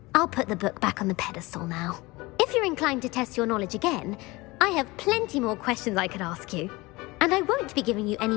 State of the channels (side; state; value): right; quieter; 22.3 dB